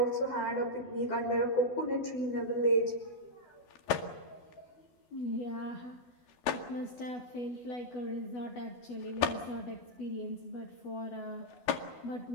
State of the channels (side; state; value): right; late; 13 ms